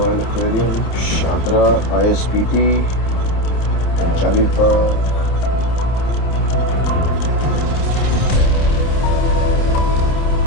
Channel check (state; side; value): late; right; 29 ms